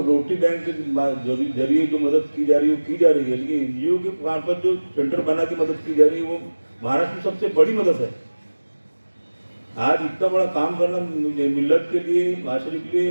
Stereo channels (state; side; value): inverted; both; correlation -1.00